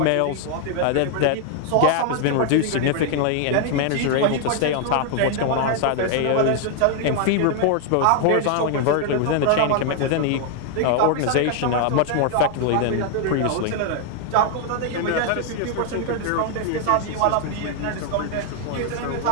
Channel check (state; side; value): different; both; correlation 0.00